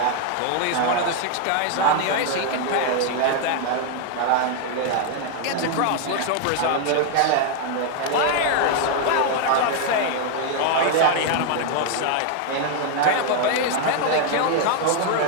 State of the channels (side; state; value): both; different; correlation 0.00